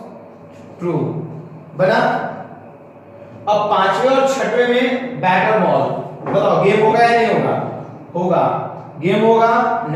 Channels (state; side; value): identical; both; correlation 1.00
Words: ट्रू बना। अब पांचवें और छठवें में बैट और बॉल, बताओ गेम होगा या नहीं होगा, होगा, गेम होगा